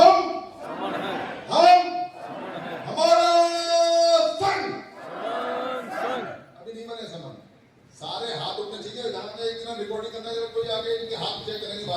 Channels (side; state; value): both; identical; correlation 1.00